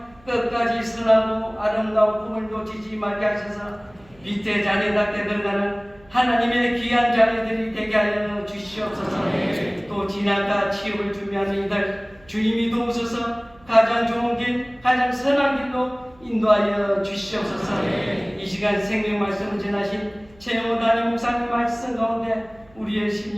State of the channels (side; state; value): right; noise; hum, 28 dB below the sound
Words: 끝까지 선하고 아름다운 꿈을 놓치지 말게 하셔서 빛의 자녀답게 들어가는 하나님의 귀한 자녀들이 되게 하여 주시옵소서. 또 진학과 취업을 준비하는 이들 주님이 도우셔서 가장 좋은 길, 가장 선한 길로 인도하여 주시옵소서. 이 시간 생명 말씀을 전하신 최영호 담임 목사님 말씀 가운데 우리의